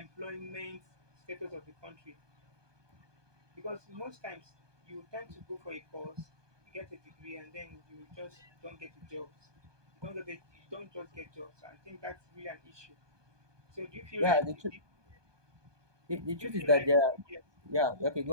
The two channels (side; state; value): left; late; 1.2 ms